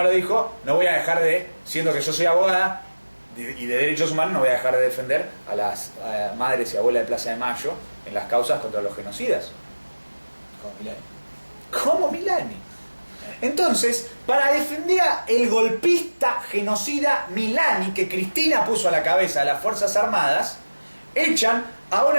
lo dijo, no voy a dejar siendo que yo soy abogada y de derechos humanos, no voy a dejar de defender a las madres y abuelas de Plaza de Mayo en las causas contra los genocidas. Como Milani. ¿Cómo Milani? Entonces, para defender al golpista genocida Milani, que Cristina puso a la cabeza de las Fuerzas Armadas, echan a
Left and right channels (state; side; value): inverted; both; correlation -1.00